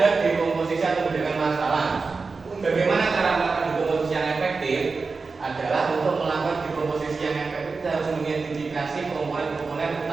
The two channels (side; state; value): left; quieter; 4.3 dB